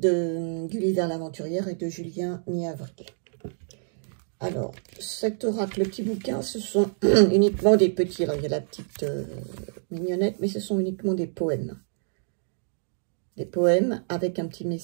Gulliver l'aventurière et de Julien Niavril. Alors, cet oracle, le petit bouquin, ce sont uniquement des petits. Alors, il y a la petite mignonnette, mais ce sont uniquement des poèmes. Des poèmes avec un petit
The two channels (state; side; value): silent; left; digital silence